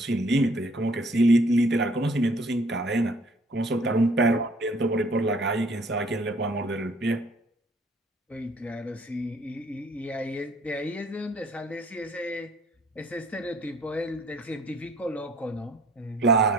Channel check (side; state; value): both; normal; correlation 0.58